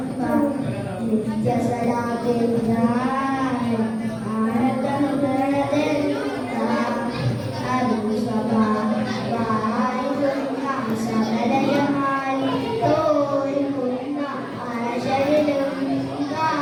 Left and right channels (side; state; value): both; identical; correlation 1.00